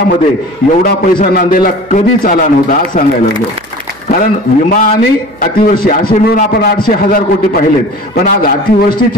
एवढा पैसा नांदेडला कधीच आला नव्हता, आज सांगायला लागलो. कारण विमा आणि अतिवृष्टी असे मिळून आपण 800,000 कोटी पाहिलेत, पण आज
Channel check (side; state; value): right; noise; hum, 28 dB below the sound